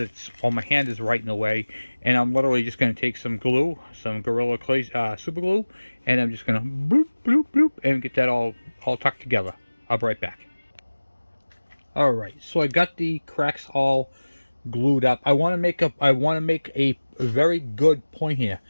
well, my hand is right in the way, and I'm literally just going to take some glue, some Gorilla Clay super glue, and I'm just going to bloop, bloop, bloop, and get that all tucked together. I'll be right back. All right, so I got the cracks all glued up. I want to make a very good point here.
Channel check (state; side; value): inverted; both; correlation -1.00